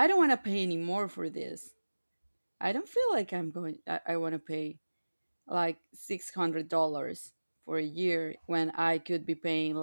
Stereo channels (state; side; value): inverted; both; correlation -1.00